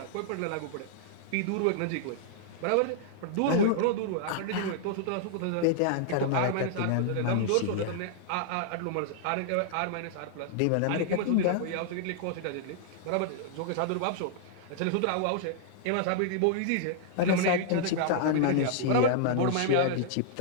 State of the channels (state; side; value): different; both; correlation -0.01